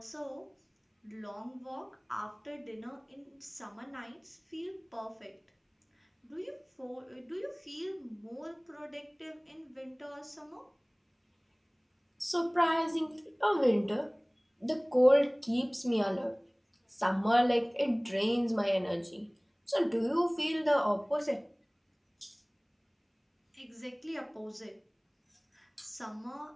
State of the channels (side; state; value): both; identical; correlation 1.00